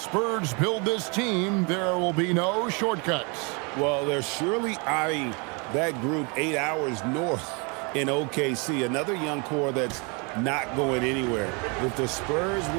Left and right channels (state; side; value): quieter; left; 32.2 dB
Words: build this team, there will be no shortcuts. Well, they're surely eyeing that group 8 hours north in OKC, another young core that's not going anywhere. If the Spurs